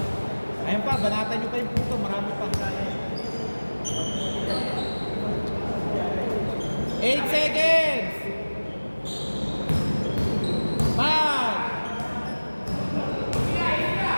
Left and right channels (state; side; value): inverted; both; correlation -1.00